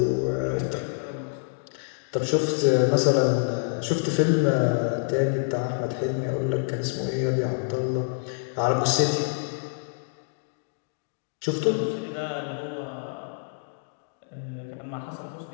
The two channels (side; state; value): right; silent; digital silence